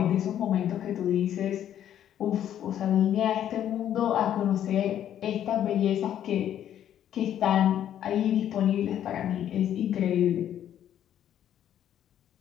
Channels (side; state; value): right; quieter; 10.6 dB